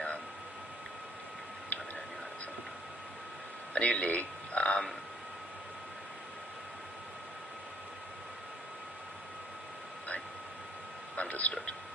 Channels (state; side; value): normal; both; correlation 0.63